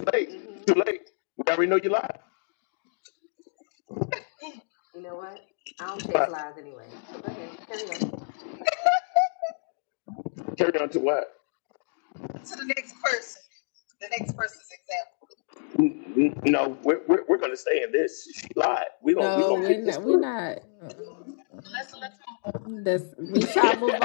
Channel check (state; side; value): silent; right; digital silence